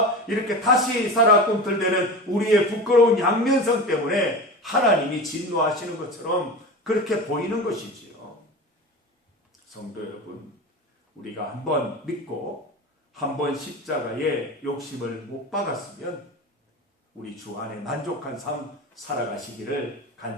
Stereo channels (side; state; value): both; normal; correlation 0.29